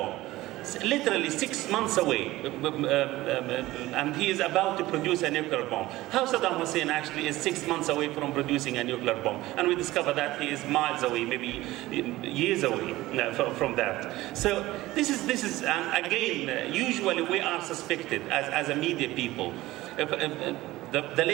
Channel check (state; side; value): quieter; left; 17.5 dB